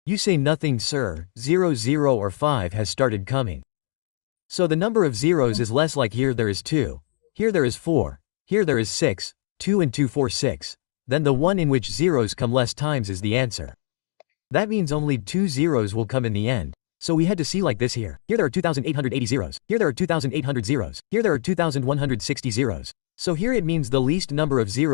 You say nothing sir, 0 0 or 5 has started coming. So the number of zeros is less like here there is 2, here there is 4, here there is 6, 2 and 2 4 6. Then the one in which zeros come less times is the answer. That means only 2 zeros will come in the end. So we had to see like this here. Here there are 2,880 zeros. Here there are 2,800 zeros. Here there are 2,160 zeros. So here it means the least number of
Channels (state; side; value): silent; right; digital silence